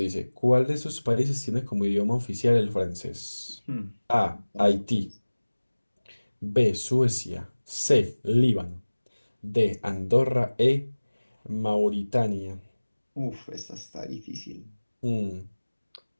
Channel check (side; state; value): both; inverted; correlation -1.00